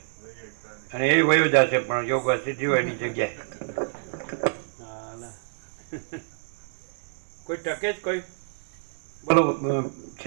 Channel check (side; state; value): left; silent; digital silence